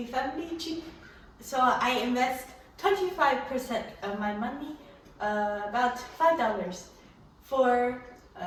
family cheap. So I invest 25% of my money, about $5 for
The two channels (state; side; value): identical; both; correlation 1.00